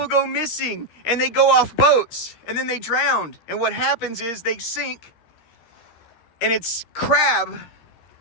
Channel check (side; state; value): right; late; 13 ms